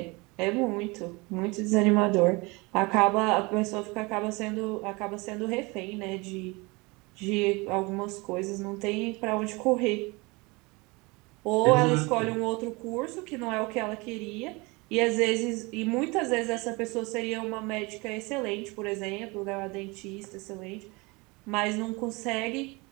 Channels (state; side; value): quieter; left; 25.8 dB